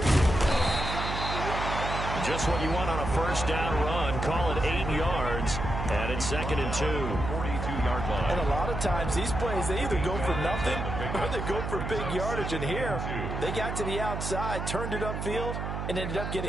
Just what you want on a first down run. Call it 8 yards, and it's 2nd and 2. 42-yard line. And a lot of times, these plays, they either go for nothing or they go for big yardage. And here, they got to the outside, turned it upfield, and ended up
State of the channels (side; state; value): right; noise; hum, 4 dB below the sound